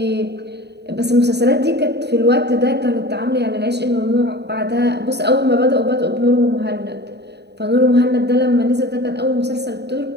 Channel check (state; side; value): late; left; 0.49 ms